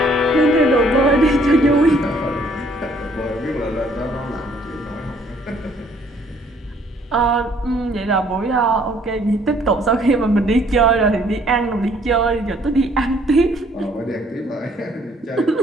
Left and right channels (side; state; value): both; normal; correlation 0.62